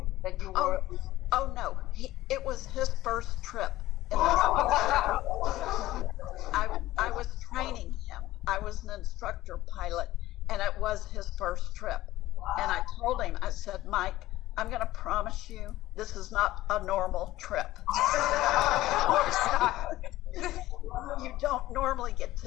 that you were... Oh no, it was his first trip. I was training him. I was an instructor pilot, and it was his first trip. And I told him, I said, Mike, I'm going to promise you this is not a normal trip. You don't normally get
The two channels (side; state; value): right; quieter; 16.2 dB